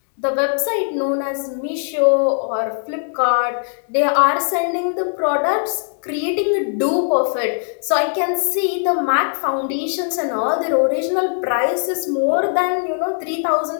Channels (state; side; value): silent; right; digital silence